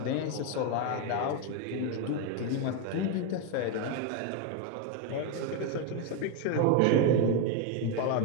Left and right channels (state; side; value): different; both; correlation 0.02